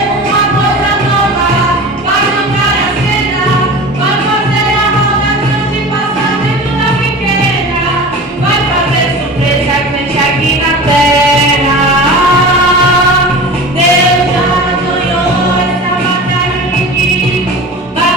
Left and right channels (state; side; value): normal; both; correlation 0.34